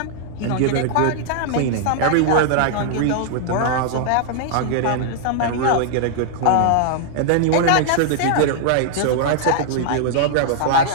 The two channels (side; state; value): both; different; correlation -0.01